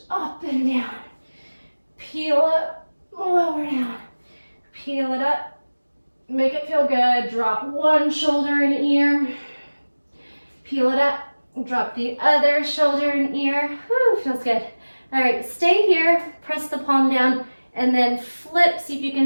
Up and down. Peel up, lower down. Peel it up. Make it feel good. Drop one shoulder and ear. Peel it up. Drop the other shoulder and ear. Woo, feels good. All right, stay here. Press the palm down and then flip. See if you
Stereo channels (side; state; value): both; inverted; correlation -1.00